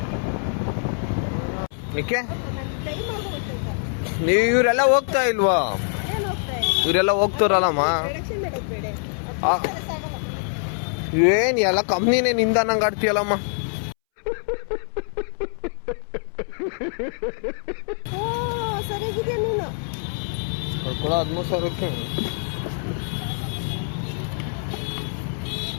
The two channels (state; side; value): silent; right; 62 dB below the other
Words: ಏಕೆ ನೀವು ಇವರೆಲ್ಲ ಹೋಗ್ತಾ ಇಲ್ವಾ? ಇವರೆಲ್ಲ ಹೋಗ್ತಾರಲ್ಲಮ್ಮ. ಏನ್ ಎಲ್ಲ ಕಂಪ್ನಿನೇ ನಿಂದ ನಂಗೆ ಆಡ್ತೀಯಲ್ಲಮ್ಮ. ಕೂಡ 13,000ಕ್ಕೆ.